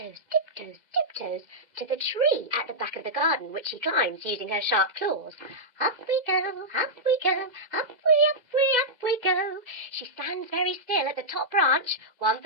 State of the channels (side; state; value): left; late; 2.0 ms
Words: tiptoes, tiptoes to the tree at the back of the garden, which she climbs using her sharp claws. Up we go, up we go, up we go. She stands very still at the top branch, 1